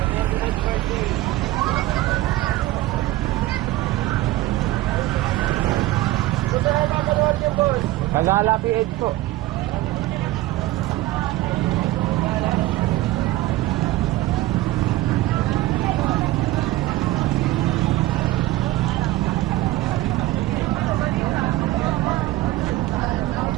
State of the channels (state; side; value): quieter; left; 16.9 dB